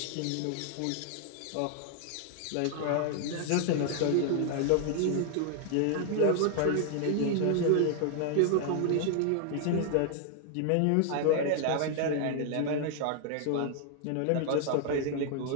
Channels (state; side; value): different; both; correlation 0.00